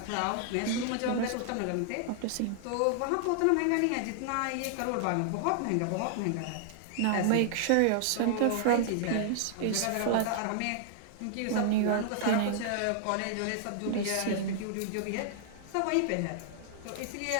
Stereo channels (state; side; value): different; both; correlation -0.01